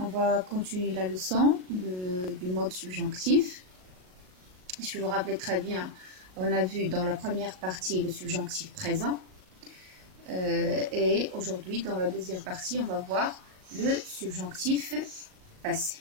va continuer la leçon du mode subjonctif. Si vous vous rappelez très bien, on a vu dans la première partie le subjonctif présent. Et aujourd'hui, dans la deuxième partie, on va voir le subjonctif passé.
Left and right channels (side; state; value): left; late; 38 ms